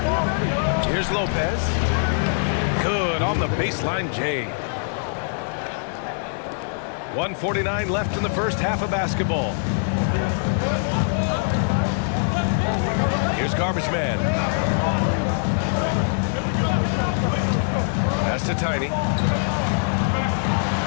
Here's Lopez. Good on the baseline, Jay. 1:49 left in the first half of basketball. Here's Garbage Man. Pass to Tiny.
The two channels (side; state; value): right; silent; digital silence